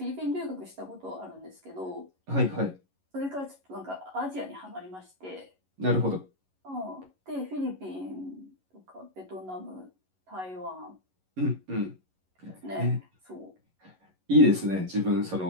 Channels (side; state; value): left; late; 11 ms